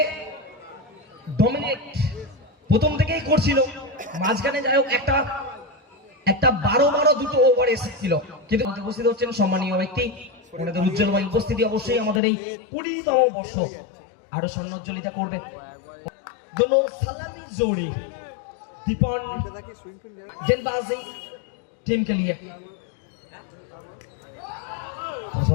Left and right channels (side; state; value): right; drops out; at 12.2 s